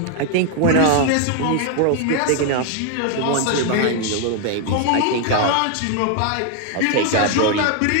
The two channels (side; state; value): both; different; correlation 0.01